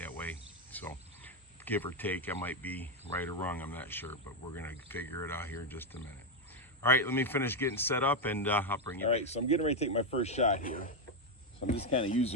way. So give or take, I might be right or wrong, I'm not sure, but we're gonna figure it out here in just a minute. All right, let me finish getting set up and I'll bring you back. All right, so I'm getting ready to take my first shot here. So I'm just kind of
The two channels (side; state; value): both; normal; correlation 0.04